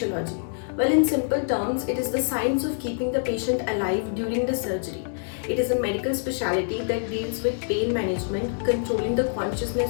Well, in simple terms, it is the science of keeping the patient alive during the surgery. It is a medical specialty that deals with pain management, controlling the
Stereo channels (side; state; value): right; silent; digital silence